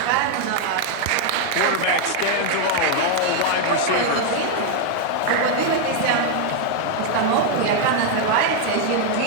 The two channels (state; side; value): different; both; correlation 0.00